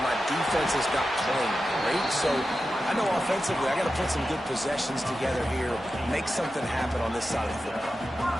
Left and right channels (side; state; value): both; normal; correlation 0.92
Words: defense is not playing great, so I know offensively I got to put some good possessions together here, make something happen on this side of the football.